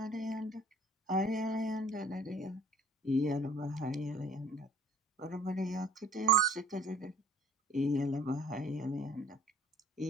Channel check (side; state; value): both; normal; correlation 0.54